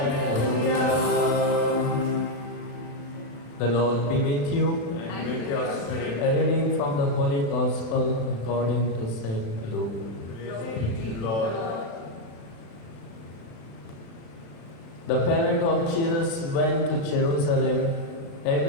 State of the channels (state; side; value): late; right; 36 ms